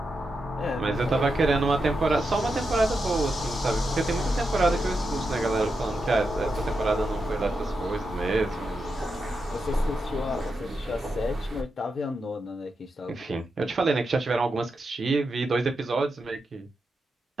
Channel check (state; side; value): normal; both; correlation 0.86